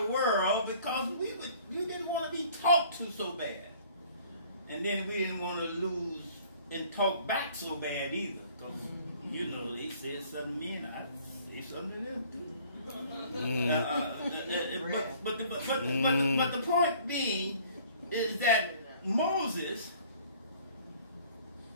world because we didn't want to be talked to so bad. And then we didn't want to lose and talk back so bad either. Because, you know, they said something to me and I say something to them too. But the point being is that Moses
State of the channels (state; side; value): inverted; both; correlation -0.54